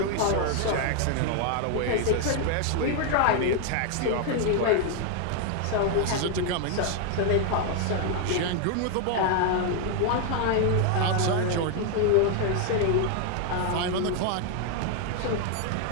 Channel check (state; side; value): different; both; correlation 0.00